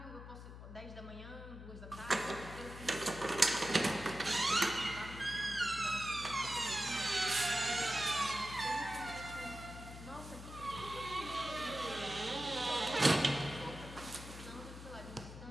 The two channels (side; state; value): left; noise; hum, 12 dB below the sound